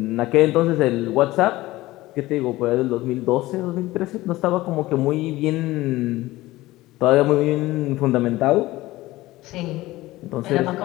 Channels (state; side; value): quieter; right; 18.0 dB